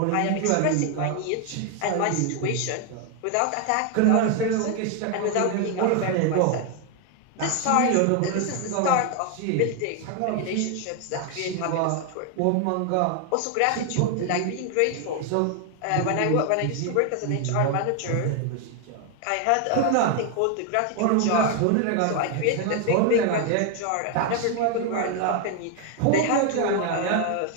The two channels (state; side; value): different; both; correlation 0.01